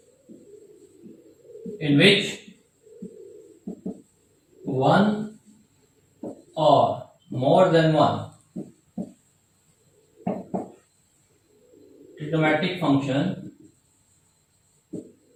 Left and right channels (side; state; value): both; identical; correlation 1.00